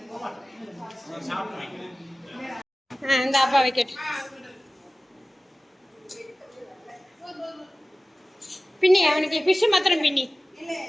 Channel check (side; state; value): both; normal; correlation 0.96